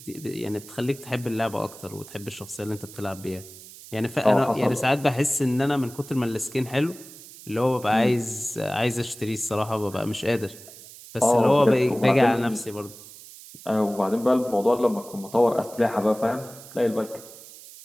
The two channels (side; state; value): right; noise; hiss, 18 dB below the sound